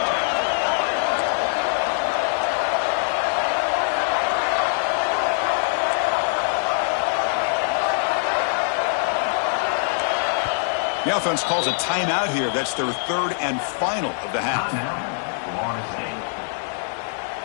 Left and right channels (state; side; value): silent; right; digital silence